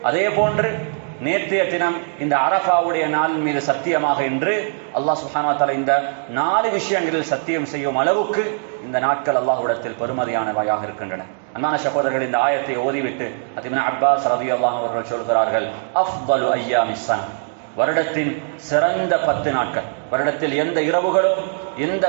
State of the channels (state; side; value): silent; left; digital silence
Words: அதே போன்று நேற்றைய தினம் இந்த அரஃபாவுடைய நாளின் மீது சத்தியமாக என்று அல்லாஹ் சுப்ஹானஹு வ தஆலா இந்த 4 விஷயங்களில் சத்தியம் செய்யும் அளவுக்கு இந்த நாட்கள் அல்லாஹ்விடத்தில் பெருமதியானவையாக இருக்கின்றன. அன்பான சகோதரர்கள், இந்த ஆயத்தை ஓதிவிட்டு இப்னு அப்பாஸ் ரலியல்லாஹு அன்ஹு அவர்கள் சொல்கிறார்கள், அஃதலு அய்யாமிஸ் ஸன, வருடத்தின் சிறந்த 10 நாட்கள், வருடத்தில் எந்த இரவுகளோ எந்த